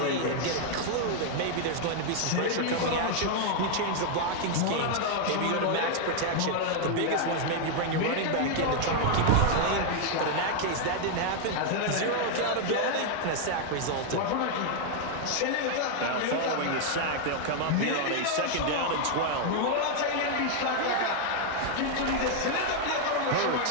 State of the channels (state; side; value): different; both; correlation 0.00